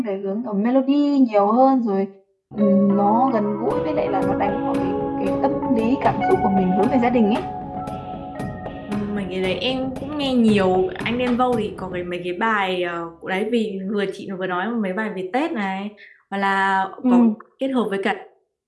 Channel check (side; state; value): both; identical; correlation 1.00